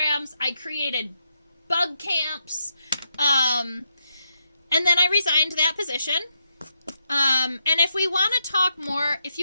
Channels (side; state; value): both; inverted; correlation -0.81